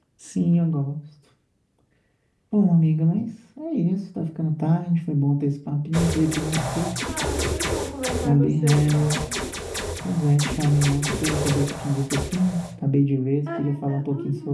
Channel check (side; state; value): both; identical; correlation 1.00